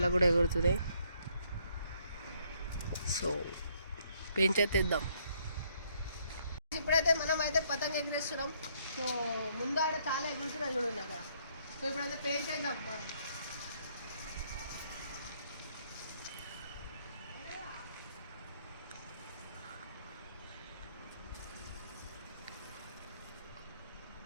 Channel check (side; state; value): both; inverted; correlation -0.69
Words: కూడా ఎగురుతున్నాయి. సో పెయింట్ చేద్దాం. ఇప్పుడైతే మనం అయితే పతంగ ఎగరేస్తున్నాం. సో ముందు ఆడ చాలా ఎగురుతున్నాయి చూడండి అక్కడ. సో ఇప్పుడైతే పెయింట్ చేద్దాం.